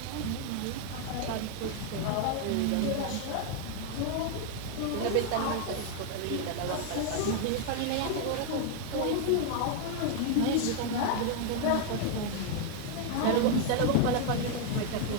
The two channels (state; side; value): different; both; correlation 0.00